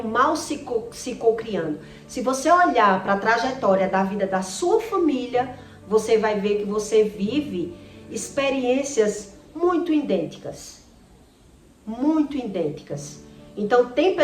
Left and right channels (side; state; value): both; identical; correlation 1.00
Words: mal se cocriando. Se você olhar para a trajetória da vida da sua família, você vai ver que você vive experiências muito idênticas. Muito idênticas. Então, tem